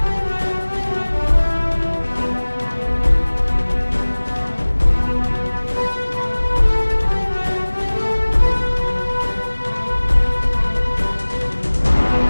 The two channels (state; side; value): inverted; both; correlation -1.00